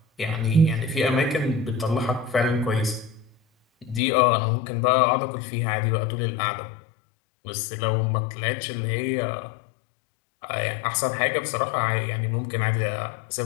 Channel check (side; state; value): right; drops out; at 4.0 s